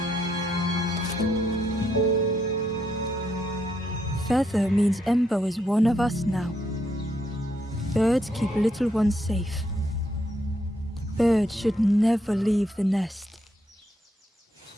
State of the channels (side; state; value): both; normal; correlation 0.76